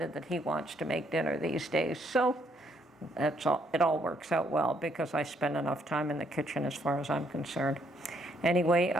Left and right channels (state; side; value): normal; both; correlation 0.70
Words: that he wants to make dinner these days. So it all works out well because I spend enough time in the kitchen as far as I'm concerned. Anyway,